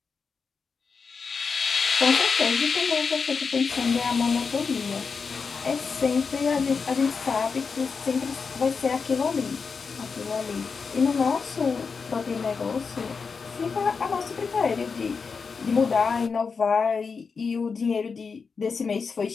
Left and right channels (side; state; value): right; quieter; 5.2 dB